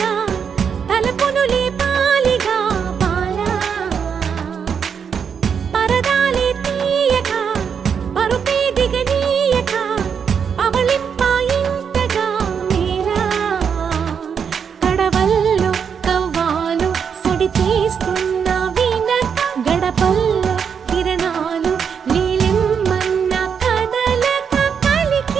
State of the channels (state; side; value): quieter; left; 7.0 dB